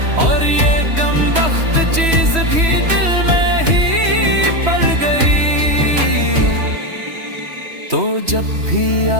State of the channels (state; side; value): late; left; 3.1 ms